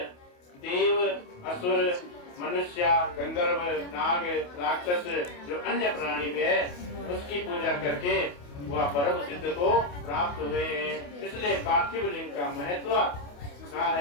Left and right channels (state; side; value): late; right; 28 ms